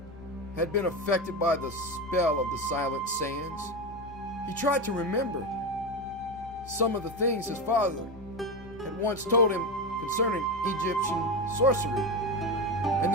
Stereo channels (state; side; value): normal; both; correlation 0.17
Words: had been affected by the spell of the silent sands. He tried to remember some of the things his father had once told him concerning Egyptian sorcery and